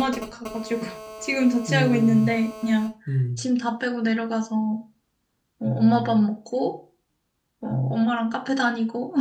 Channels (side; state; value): both; identical; correlation 1.00